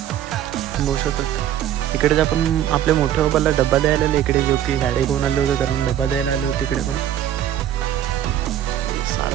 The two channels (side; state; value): left; quieter; 11.2 dB